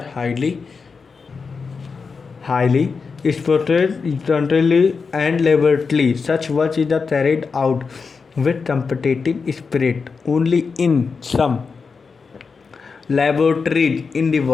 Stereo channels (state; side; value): quieter; right; 5.0 dB